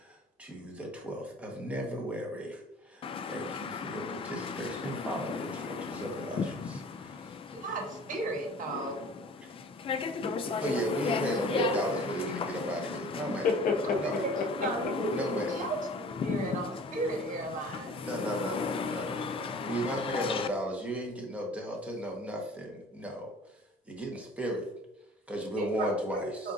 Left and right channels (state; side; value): normal; both; correlation 0.47